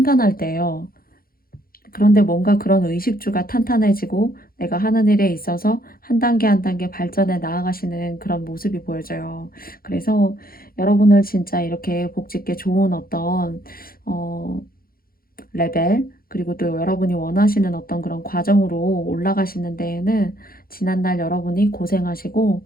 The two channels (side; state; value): right; late; 0.43 ms